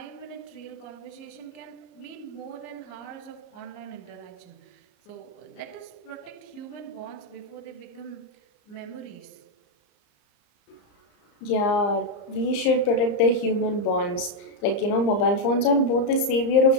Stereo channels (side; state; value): right; late; 34 ms